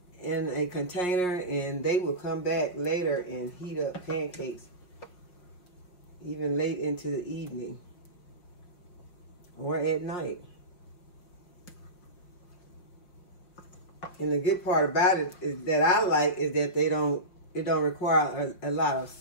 in a container, and they will come back later and heat up pancakes even late into the evening or at night. And the good part about it is that I like is that it don't require a lot of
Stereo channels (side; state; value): right; late; 5.6 ms